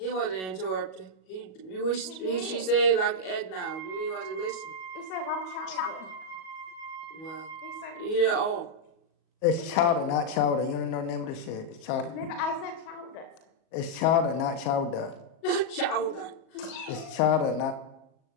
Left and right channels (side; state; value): right; late; 37 ms